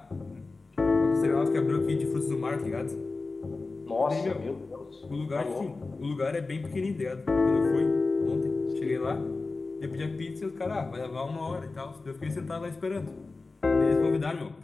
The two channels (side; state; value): right; quieter; 3.7 dB